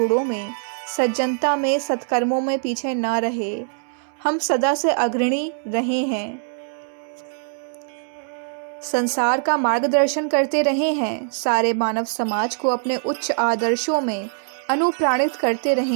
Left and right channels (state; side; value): silent; left; digital silence